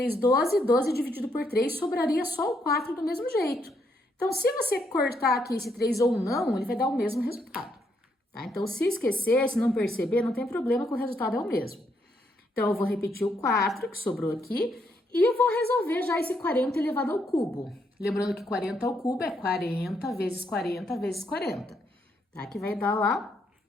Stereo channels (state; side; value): normal; both; correlation 0.75